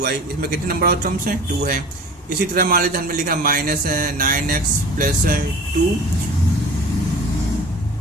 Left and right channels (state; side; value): normal; both; correlation 0.41